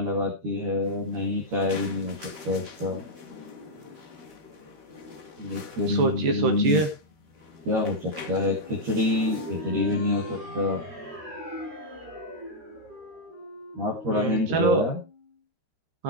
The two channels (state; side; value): late; left; 12 ms